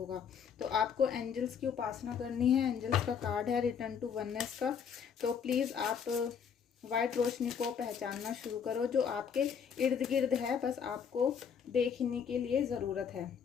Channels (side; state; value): right; quieter; 7.1 dB